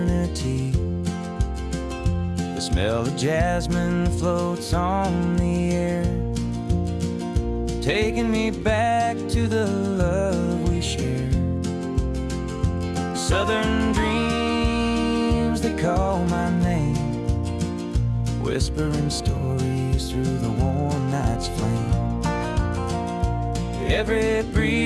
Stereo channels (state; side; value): identical; both; correlation 1.00